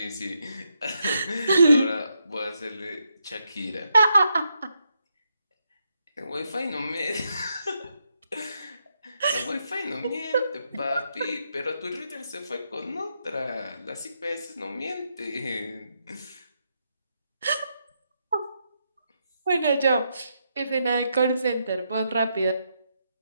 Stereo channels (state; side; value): inverted; both; correlation -0.81